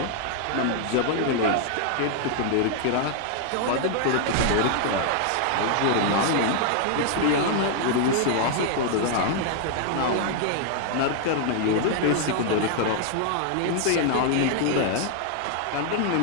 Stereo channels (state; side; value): different; both; correlation 0.00